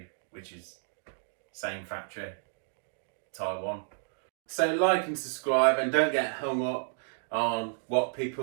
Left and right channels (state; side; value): silent; left; digital silence